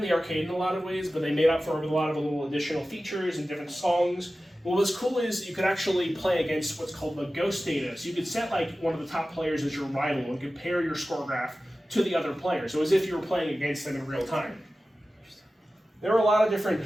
the arcade in a lot of ways, but they made up for it with a lot of little additional features and different songs. What was cool is you could actually play against what's called the ghost data. So you could set like one of the top players as your rival and compare your score graph to the other player. So as if you were playing against them in real time. There were a lot of different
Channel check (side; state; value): both; normal; correlation 0.95